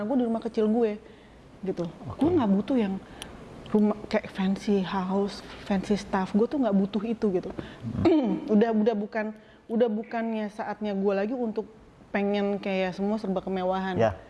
gue di rumah kecil gue gitu. Gue nggak butuh yang rumah kayak fancy house, fancy stuff. Gue tuh nggak butuh itu gitu. udah bukannya saatnya gue lagi untuk pengen kayak semua serba kemewahan.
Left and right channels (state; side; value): identical; both; correlation 1.00